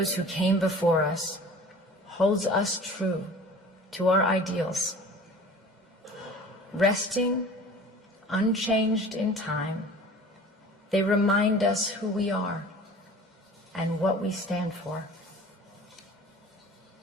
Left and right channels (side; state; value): both; normal; correlation 0.43